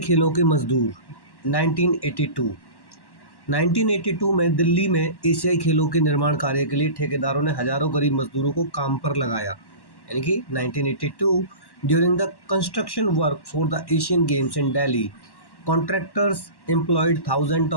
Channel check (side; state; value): right; late; 1.1 ms